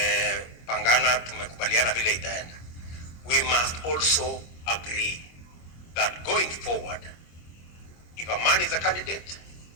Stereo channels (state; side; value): late; right; 25 ms